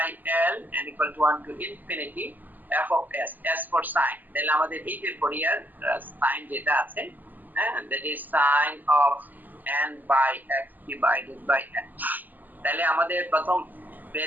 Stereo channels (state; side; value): late; left; 0.085 ms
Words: L and equal to 1 to infinity f of s, s for sin, তাহলে আমাদের এই যে ফুরিয়ার সাইন যেটা আছে, that is sin of n by x divided by n। তাহলে আমাদের প্রথম